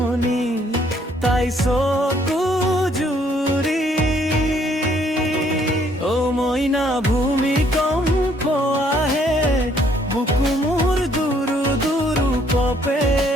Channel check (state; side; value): normal; both; correlation 0.65